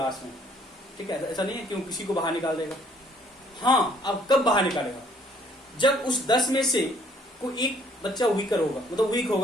में। ठीक है, ऐसा नहीं है क्यों किसी को बाहर निकाल देगा। हाँ, अब कब बाहर निकालेगा? जब उस 10 में से कोई एक बच्चा वीकर होगा, मतलब वीक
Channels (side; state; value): both; normal; correlation 0.62